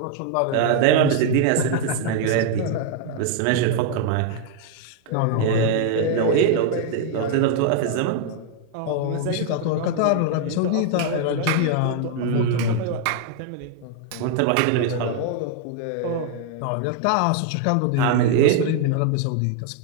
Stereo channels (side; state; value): both; different; correlation 0.00